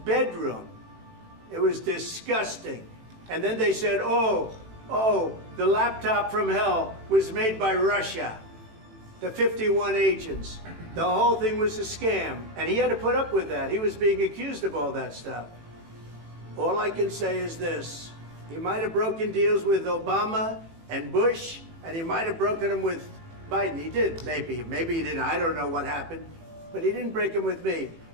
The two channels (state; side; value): late; left; 18 ms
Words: It was disgusting. And then they said, oh, the laptop from hell was made by Russia. the 51 agents. The whole thing was a scam, and he had to put up with that. He was being accused of all that stuff. All I can say is this. He might have broken deals with Obama and Bush, and he might have broken them with Biden. He did, maybe. Maybe he didn't. I don't know what happened. But he didn't break them with me.